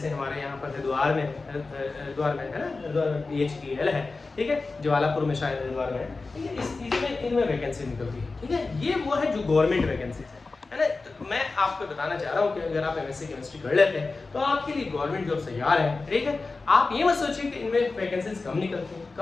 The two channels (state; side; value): quieter; right; 3.8 dB